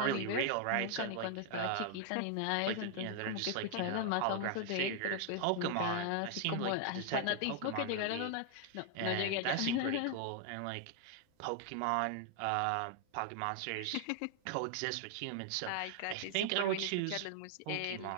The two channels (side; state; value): both; different; correlation 0.00